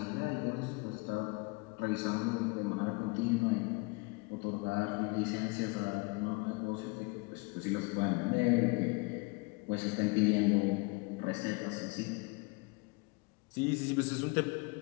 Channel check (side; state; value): right; quieter; 27.5 dB